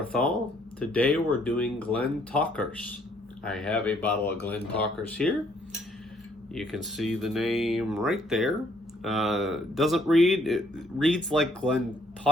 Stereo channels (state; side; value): normal; both; correlation 0.66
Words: Today we're doing Glentauchers. I have a bottle of Glentauchers here. You can see the name right there. Doesn't read, it reads like